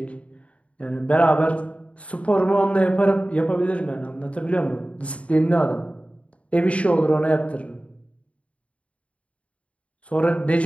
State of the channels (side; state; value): right; late; 0.064 ms